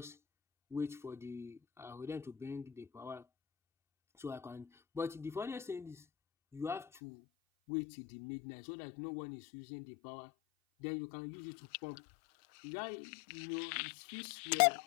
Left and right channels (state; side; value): drops out; right; at 6.9 s